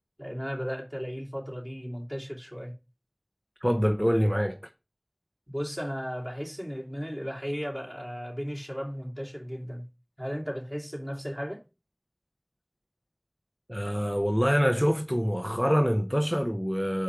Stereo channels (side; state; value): both; identical; correlation 1.00